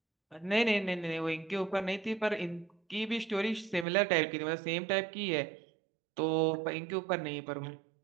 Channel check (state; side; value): drops out; left; at 3.9 s